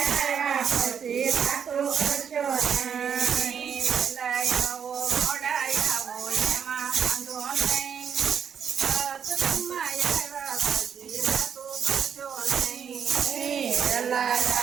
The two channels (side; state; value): left; quieter; 7.6 dB